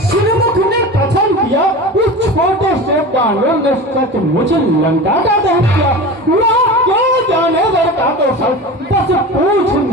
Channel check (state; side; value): normal; both; correlation 0.31